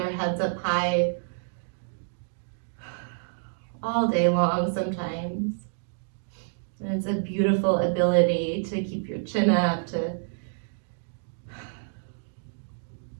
heads up high all day long sometimes. And it's a beautiful ability to keep your chin up, to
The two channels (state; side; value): silent; left; digital silence